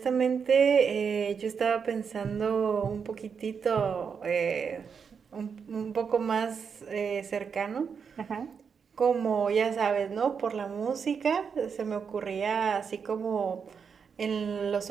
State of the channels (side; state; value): left; quieter; 6.3 dB